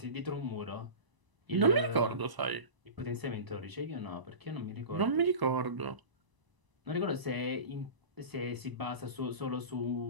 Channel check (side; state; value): left; late; 1.0 ms